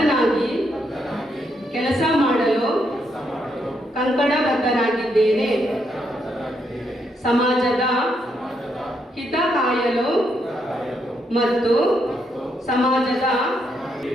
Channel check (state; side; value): normal; both; correlation 0.78